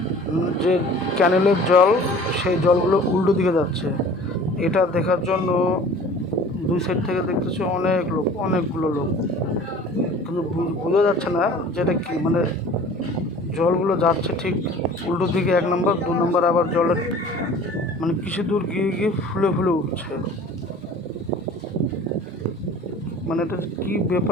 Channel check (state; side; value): normal; both; correlation 0.45